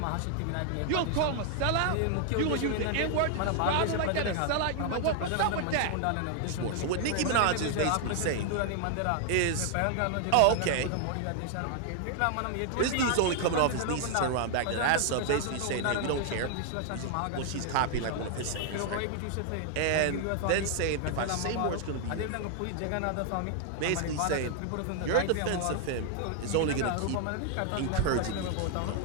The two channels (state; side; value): different; both; correlation 0.00